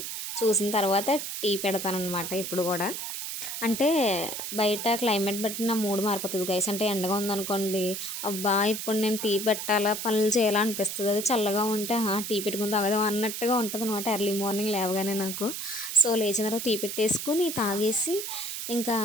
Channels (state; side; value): noise; right; hiss, 5 dB below the sound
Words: చూసిన తర్వాత టీ పెడతాను అనమాట. ఇప్పుడు కూడా అంటే బయట క్లైమేట్ బట్టి నా మూడ్ మారిపోతుంది గైస్. అంటే ఎండగా ఉందనుకోండి, అబ్బా ఇప్పుడు నేను టీ పెట్టాలా పనులు చేయాలా అనిపిస్తుంది. అది చల్లగా ఉంటే టీ పెట్టుకుని తాగదాం అన్నట్టుగా ఉంటుంది అనమాట ఎర్లీ మార్నింగ్ లేవగానే నాకు. సో లేచిన తర్వాత టీ పెట్టేసుకుని తాగేసి ఇంకా